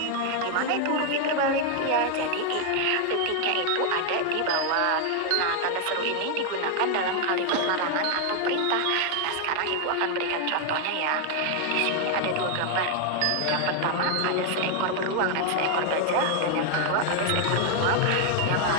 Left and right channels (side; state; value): both; different; correlation 0.00